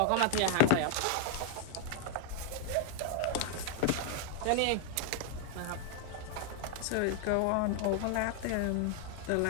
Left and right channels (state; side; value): different; both; correlation 0.00